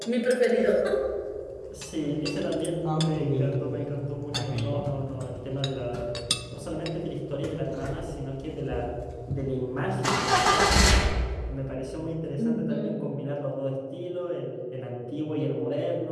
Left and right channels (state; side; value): identical; both; correlation 1.00